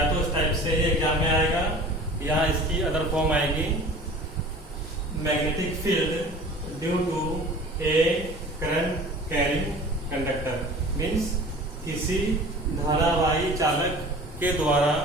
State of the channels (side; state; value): both; normal; correlation 0.43